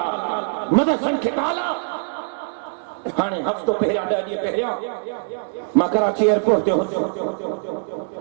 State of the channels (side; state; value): left; silent; digital silence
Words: मदरसन के ताला हाने हफ्तो पहिरिया 10 ॾींहं पहिरिया मां कराची एयरपोर्ट ते हुंदो